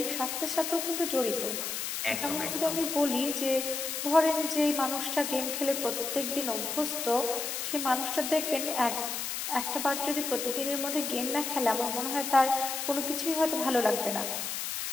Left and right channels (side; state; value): left; noise; hiss, 3 dB below the sound